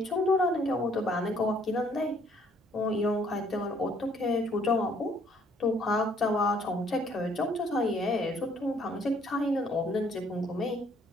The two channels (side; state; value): both; normal; correlation 0.63